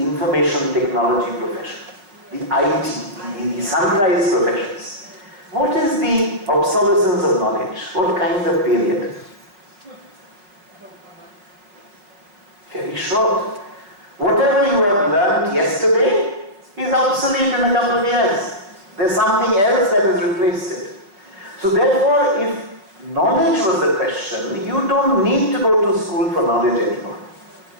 technology profession, the IT, the sunrise professions, what is the obsolescence of knowledge? What kind of period? Very short. Whatever you have learned yesterday is obsolete in a couple of years. There's something else that has replaced it. So therefore, if knowledge was the question, you don't need to go to school for knowledge anymore.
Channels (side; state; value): left; late; 5.4 ms